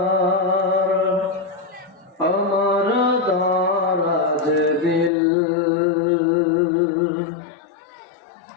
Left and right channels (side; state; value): right; drops out; at 5.1 s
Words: আমার দারাজ দিল